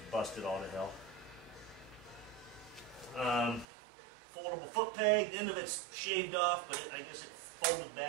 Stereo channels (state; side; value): drops out; left; at 3.7 s